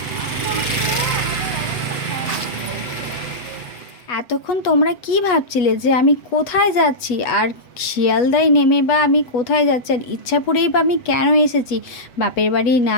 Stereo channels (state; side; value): late; right; 8.2 ms